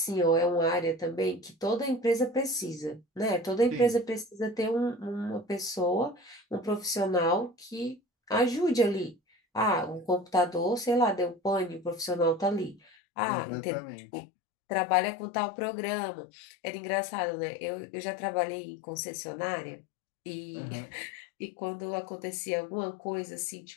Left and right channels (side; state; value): right; drops out; at 12.8 s